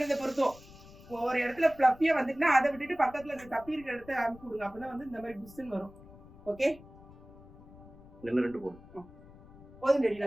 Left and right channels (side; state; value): left; noise; rumble, 20 dB below the sound